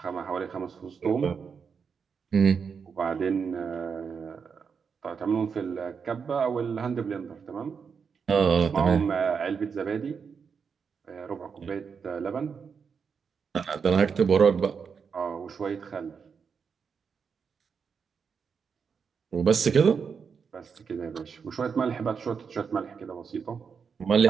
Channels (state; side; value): quieter; left; 6.1 dB